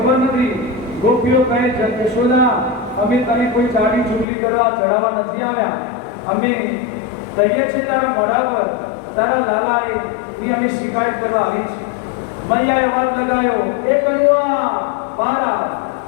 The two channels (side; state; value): right; drops out; at 4.2 s